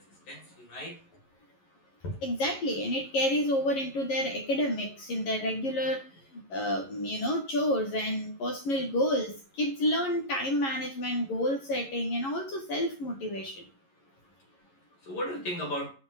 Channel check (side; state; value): right; late; 11 ms